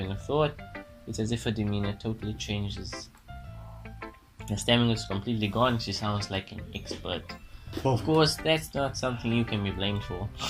of thought, it's as if her demeanor totally changes. Her stamina is completely gone, she sounds like an expert. Of course, that's not something you can be blamed for.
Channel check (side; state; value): both; identical; correlation 1.00